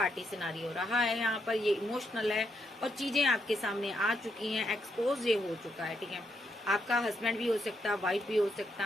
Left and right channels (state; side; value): normal; both; correlation 0.79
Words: सिनारियो रहा है यहाँ पर, ये इमोशनल है और चीजें आपके सामने आ चुकी हैं, एक्सपोज ये हो चुका है, ठीक है। आपका हस्बैंड भी हो सकता, वाइफ भी हो